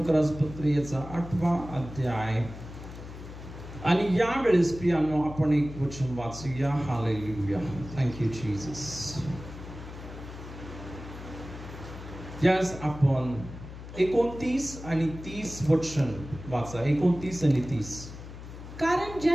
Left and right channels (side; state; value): left; noise; hum, 13 dB below the sound